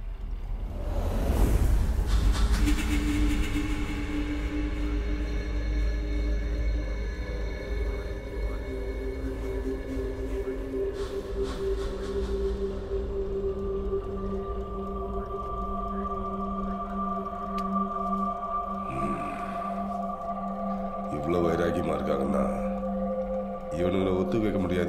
இவ்வளோ வைராக்கியமா இருக்காங்கன்னா இவனுங்களை ஒத்து வைக்க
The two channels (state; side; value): identical; both; correlation 1.00